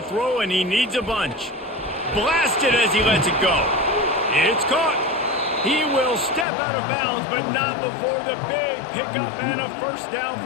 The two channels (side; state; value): right; drops out; at 6.5 s